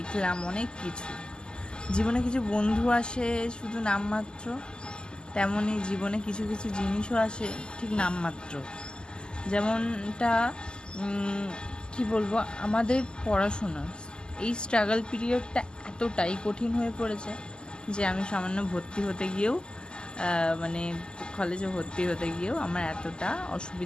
অনেক কিছু। জীবনে কিছু বন্ধু আসে শুধু নামমাত্র, তেমনই জীবনে কিছু কিছু জিনিসও আসে ঠিক নামমাত্র। যেমনটা কি বলবো, আমাদের পড়াশোনা, এই স্ট্রাগল পিরিয়ডটা এতটাই কঠিন হয়ে পড়েছে যে আমি সামান্য ভর্তি হতে গিয়েও মানে কলেজে ভর্তি হতে গিয়েও আমার এতটা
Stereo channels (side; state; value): right; late; 0.047 ms